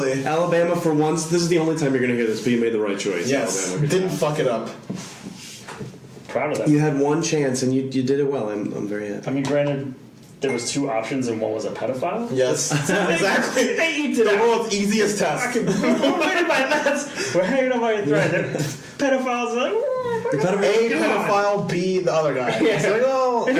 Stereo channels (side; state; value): both; identical; correlation 1.00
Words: Alabama, for once, this is the only time you're going to hear this, but you made the right choice. Yes, Alabama. didn't fuck it up. Proud of that. You had one chance, and you did it well. I'm very happy. I mean, granted, there was 2 options, and one was a pedophile. Yes, exactly. They eat The world's easiest test. We're hanging on by a thread. Pedophiles are like, A pedophile, B the other guy. It's like, oh, and